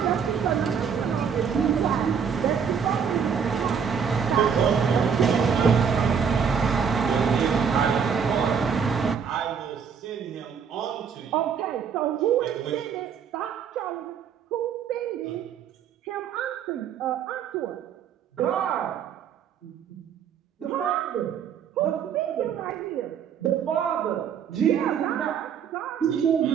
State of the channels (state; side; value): quieter; left; 7.1 dB